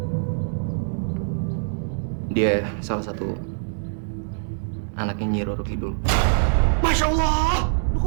dia salah satu anaknya Nyi Roro Kidul. Masya Allah! Lu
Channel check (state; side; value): silent; left; digital silence